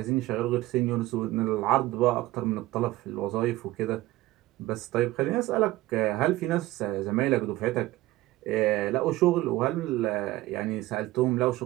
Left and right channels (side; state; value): left; quieter; 17.4 dB